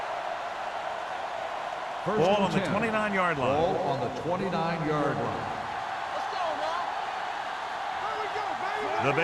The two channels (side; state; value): both; identical; correlation 1.00